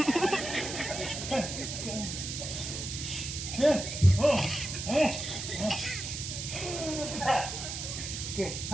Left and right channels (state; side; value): noise; right; hiss, 6 dB below the sound